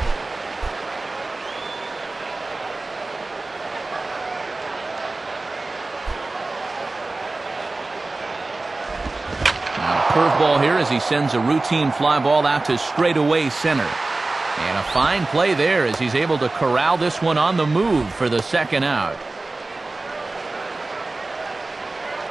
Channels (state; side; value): quieter; left; 3.2 dB